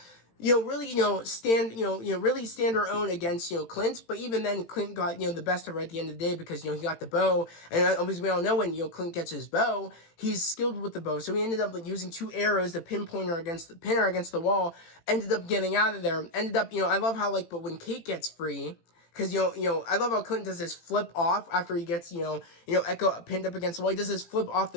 really, really stand her own against, Clint. But even then, Clint got, the best of her at the end of the day because, he got the bow. And as we all know, when, Clint gets his bow, he's skilled with the bow. So he ended up, like, using 2 arrows to pin her against the wall, ended up getting out of there. Ended up, I love how, like, but when Kate gets free, because, I love how Clint does this flip off after he gets, Echo pinned up against the wall. He does this flip off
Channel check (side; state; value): right; late; 18 ms